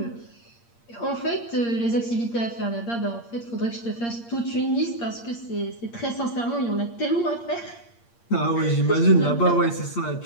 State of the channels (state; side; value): late; right; 8.6 ms